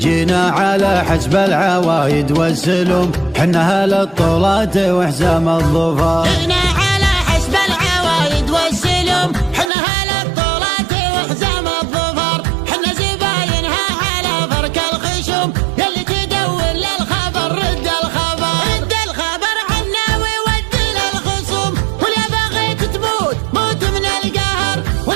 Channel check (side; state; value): left; drops out; at 9.7 s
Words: على حسب العوايد والسلم، حنا اهل الطولات وحزام الظفر. جينا على حسب العوايد والسلم، حنا اهل الطولات وحزام الظفر. حنا زباينها على فرك الخشم، يلي تدور للخبر رد الخبر. رد الخبر عنا وود للخصوم، واليا بغيت تموت موت من القهر،